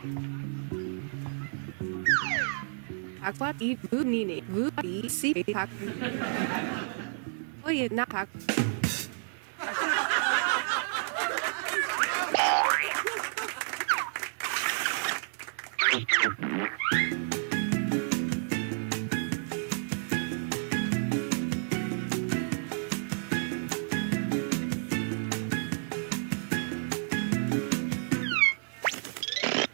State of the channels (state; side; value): silent; left; digital silence